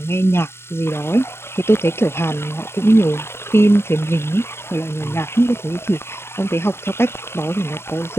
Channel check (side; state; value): right; late; 0.12 ms